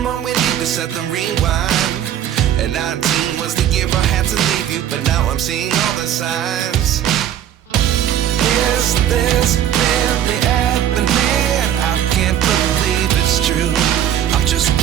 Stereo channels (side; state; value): left; quieter; 10.8 dB